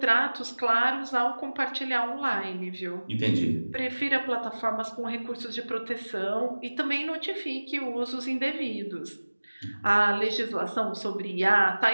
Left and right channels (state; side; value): inverted; both; correlation -1.00